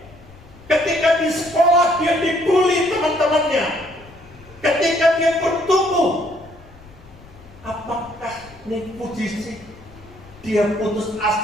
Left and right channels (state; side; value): noise; left; rumble, 22 dB below the sound